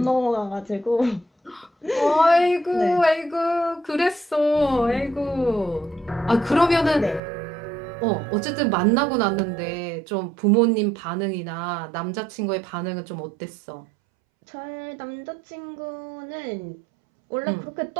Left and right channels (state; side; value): drops out; left; at 7.2 s